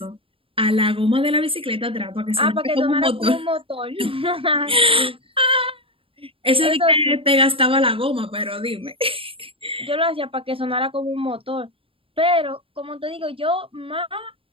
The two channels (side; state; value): left; late; 0.26 ms